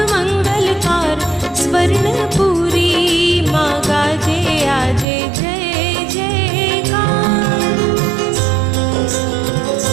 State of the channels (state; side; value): drops out; left; at 5.1 s